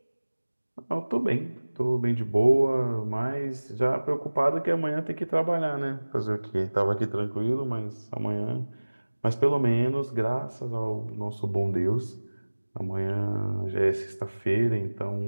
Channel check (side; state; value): both; inverted; correlation -1.00